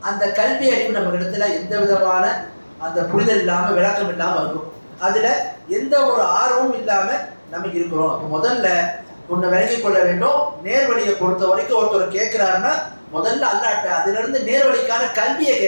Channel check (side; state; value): both; inverted; correlation -1.00